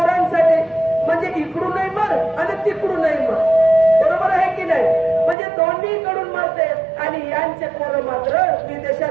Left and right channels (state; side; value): drops out; left; at 5.4 s